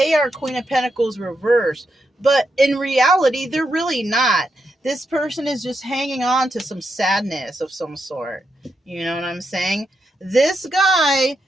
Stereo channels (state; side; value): normal; both; correlation 0.83